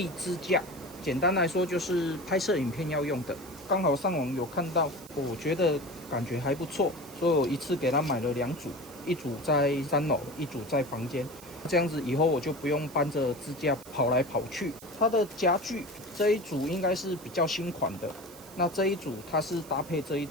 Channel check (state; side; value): noise; right; hiss, 19 dB below the sound